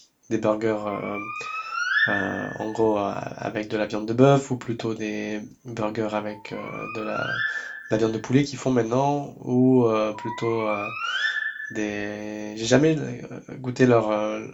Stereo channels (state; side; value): identical; both; correlation 1.00